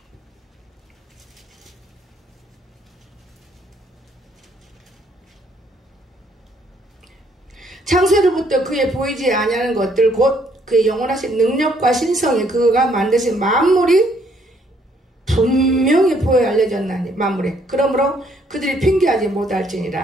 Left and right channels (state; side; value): normal; both; correlation 0.67